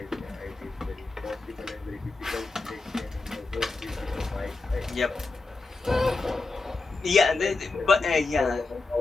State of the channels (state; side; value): quieter; right; 3.5 dB